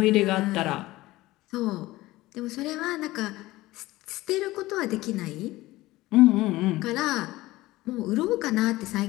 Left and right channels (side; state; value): right; quieter; 18.2 dB